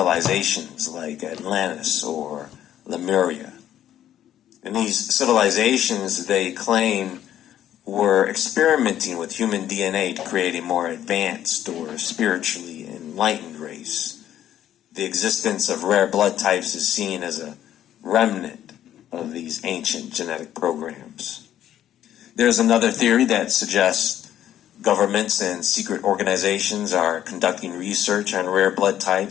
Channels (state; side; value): quieter; right; 11.4 dB